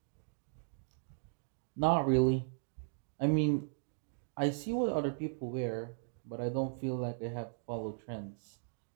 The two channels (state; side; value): silent; left; digital silence